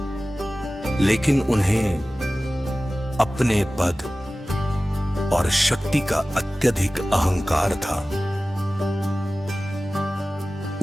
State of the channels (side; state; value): both; normal; correlation 0.97